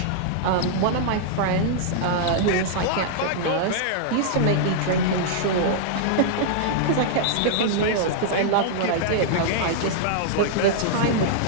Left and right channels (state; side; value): different; both; correlation -0.01